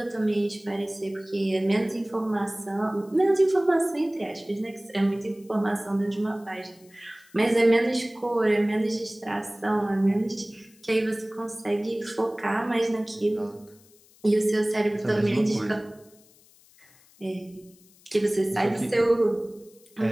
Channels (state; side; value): noise; left; hiss, 28 dB below the sound